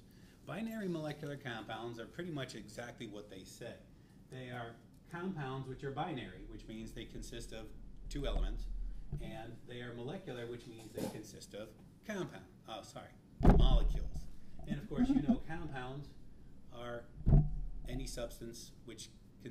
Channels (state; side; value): identical; both; correlation 1.00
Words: Binary molecular compounds are pretty much exactly what they say. They are compounds which are binary, which means they consist of two elements, and they are molecular, which means they consist of molecules. And of course, you know compounds are any substance which